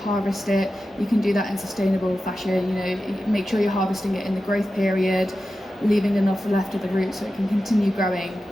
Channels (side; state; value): both; normal; correlation 0.92